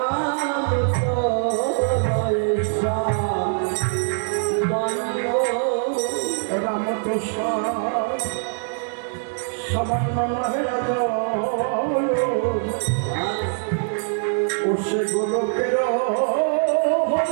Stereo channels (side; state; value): left; silent; digital silence